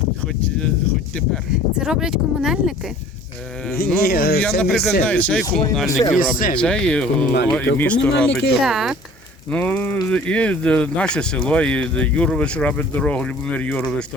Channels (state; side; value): normal; both; correlation 0.49